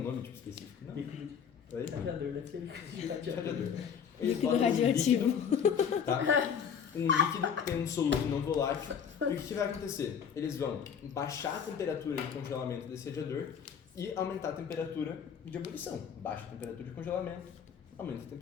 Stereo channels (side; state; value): right; quieter; 7.5 dB